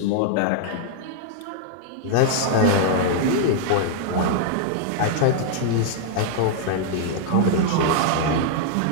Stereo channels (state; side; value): different; both; correlation -0.01